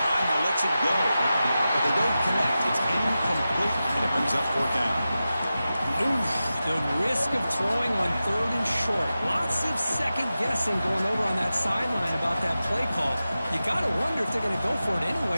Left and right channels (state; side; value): inverted; both; correlation -0.93